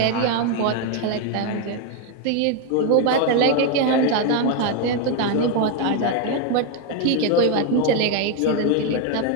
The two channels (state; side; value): different; both; correlation 0.02